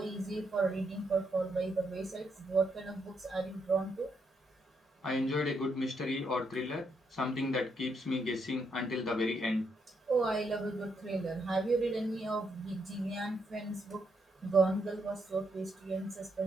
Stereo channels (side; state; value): both; normal; correlation 0.77